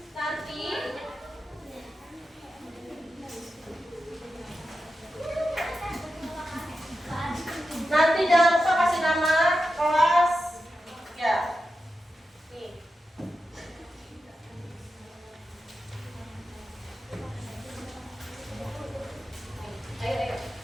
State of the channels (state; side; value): normal; both; correlation 0.90